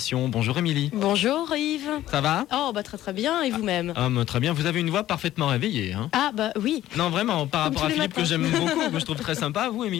Bonjour Émilie. Bonjour Yves. Ça va ? Oh bah très bien, et vous-même? Très bien, vous avez une voix parfaitement réveillée. Hein. Ah bah oui. Non vraiment, par Comme rapport à tous les Philippe que matins. j'aime beaucoup, que je trouve très sympa, vous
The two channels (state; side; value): quieter; right; 13.7 dB